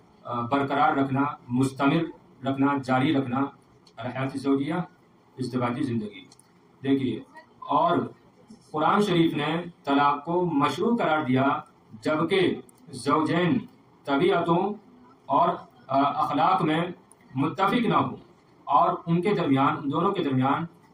برقرار رکھنا، مستمر رکھنا، جاری رکھنا. الحیات الزوجیہ ازدواجی زندگی. دیکھیے اور قرآن شریف نے طلاق کو مشروع قرار دیا جبکہ زوجین طبیعتوں اور اخلاق میں متفق نہ ہوں اور ان کے درمیان، ان دونوں کے درمیان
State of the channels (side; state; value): both; identical; correlation 1.00